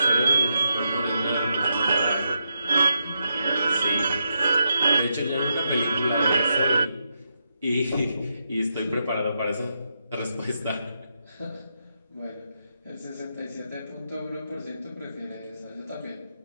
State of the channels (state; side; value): inverted; both; correlation -0.84